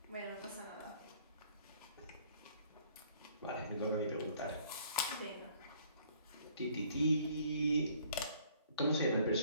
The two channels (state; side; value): inverted; both; correlation -0.59